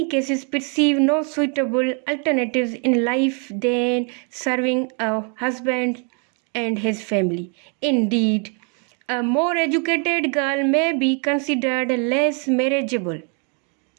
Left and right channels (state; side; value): quieter; left; 38.3 dB